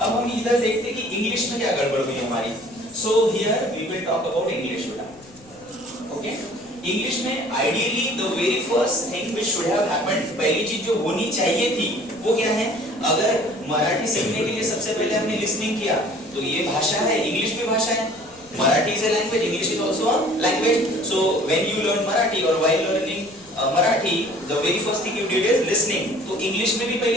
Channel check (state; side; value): noise; left; rumble, 27 dB below the sound